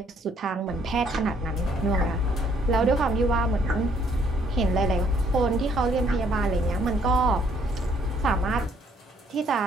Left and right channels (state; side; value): normal; both; correlation 0.66